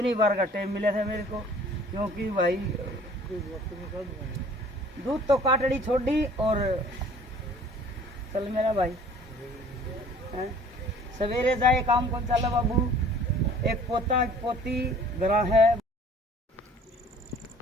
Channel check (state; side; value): normal; both; correlation 0.51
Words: बार का टाइम मिला था मेरे को, क्योंकि भाई दूध तो काटड़ी छोड़ दी। और चल मेरा भाई, सवेरे जाए काम कौन चला बाबू। एक पोता एक पोती घरा है